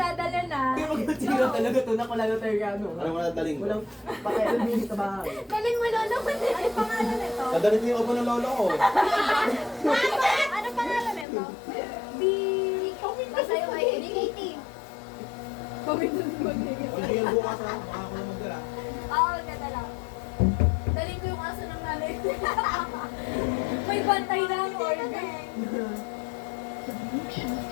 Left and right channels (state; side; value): drops out; right; at 11.2 s